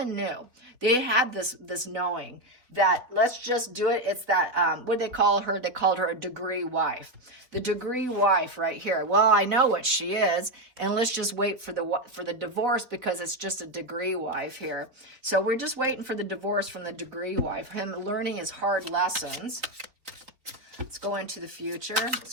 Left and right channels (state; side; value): late; left; 3.9 ms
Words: knew. They had this knowing that let's just do it. It's that, what did they call her? They called her a degree wife. The degree wife right here. Well, I know what she is, and let's just wait for the divorce because it's just a degree wife here. So we're just waiting for the divorce from the degree wife. Him learning his hard lessons. Let's go into the future. Let's